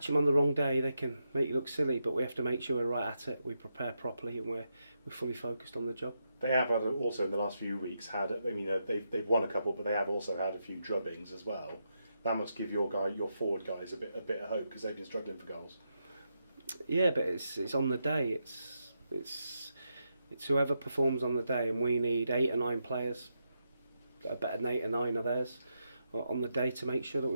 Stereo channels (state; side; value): inverted; both; correlation -0.84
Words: them on the wrong day, they can make you look silly. But we have to make sure we're right at it. We prepare properly, and we're fully focused on the job. They have also in the last few weeks they've won a couple, but they have also had a few drubbings as well. That must give your forward guys a bit of hope, because they've been struggling for goals. Yeah, but it's on the day. It's whoever performs on the day, and we need 8 or 9 players that are better than 8 or 9 of theirs on the day to make sure that